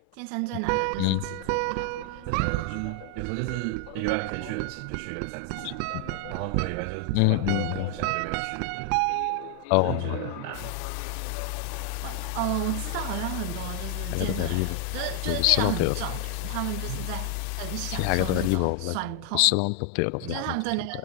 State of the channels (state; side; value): different; both; correlation 0.00